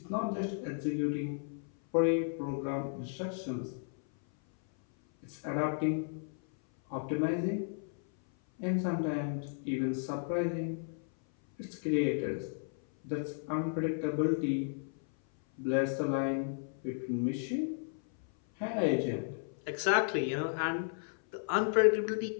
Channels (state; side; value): silent; right; 55 dB below the other